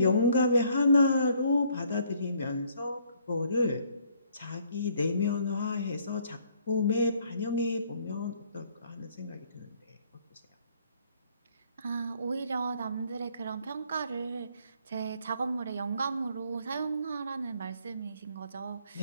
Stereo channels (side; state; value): both; inverted; correlation -0.64